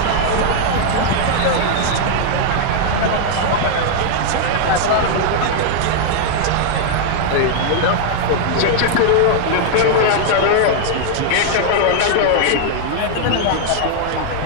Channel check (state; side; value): different; both; correlation 0.00